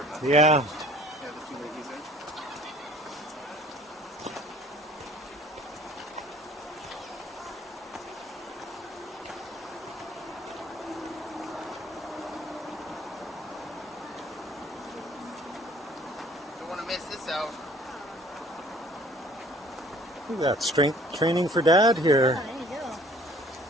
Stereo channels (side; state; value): both; normal; correlation 0.53